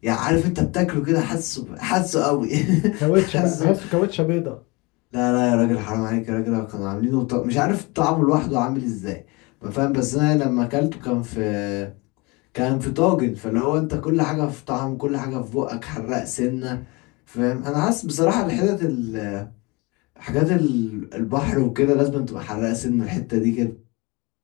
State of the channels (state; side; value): quieter; right; 26.3 dB